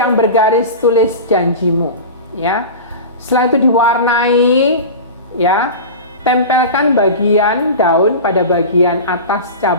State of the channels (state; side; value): inverted; both; correlation -0.30